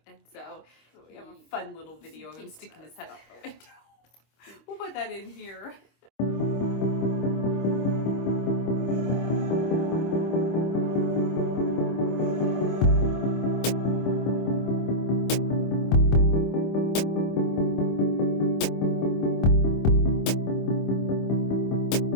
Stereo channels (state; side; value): late; right; 25 ms